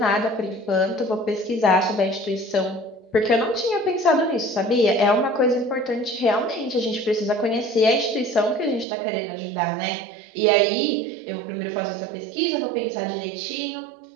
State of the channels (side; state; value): left; drops out; at 8.8 s